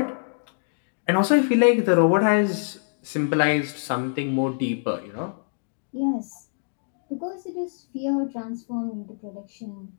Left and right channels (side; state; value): right; silent; digital silence